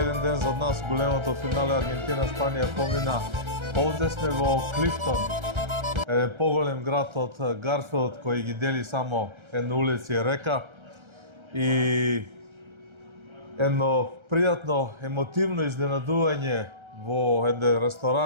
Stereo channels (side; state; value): left; late; 1.3 ms